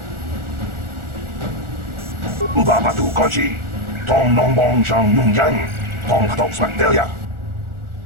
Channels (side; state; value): left; late; 1.4 ms